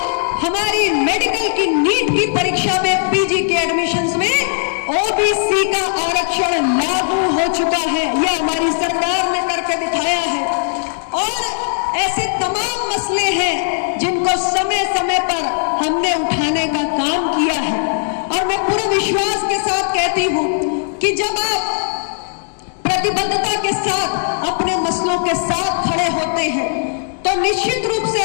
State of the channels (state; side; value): silent; right; digital silence